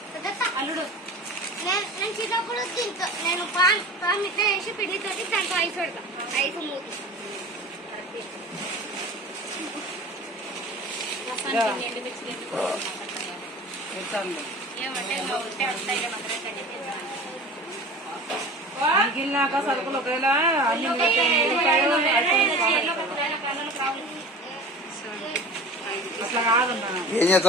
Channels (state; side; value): normal; both; correlation 0.38